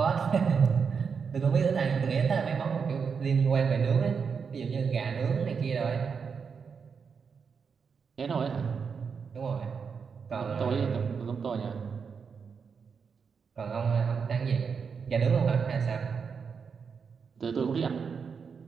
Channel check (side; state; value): left; quieter; 6.0 dB